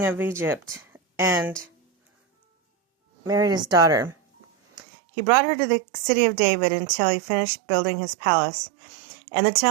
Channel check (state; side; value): drops out; left; at 4.8 s